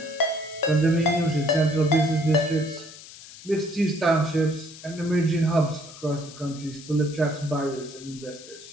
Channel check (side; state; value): left; noise; hiss, 17 dB below the sound